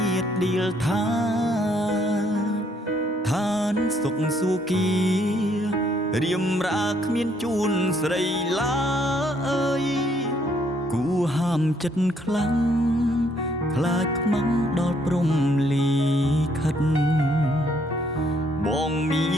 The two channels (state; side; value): normal; both; correlation 0.68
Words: ាតដៀលថាឋានសុខសួគ៌រៀមរាគ្មានជូនស្រីឡើយគួហាមចិត្តខ្លាំងខ្លាចខ្មាំងដល់ព្រំលីខិតបងមា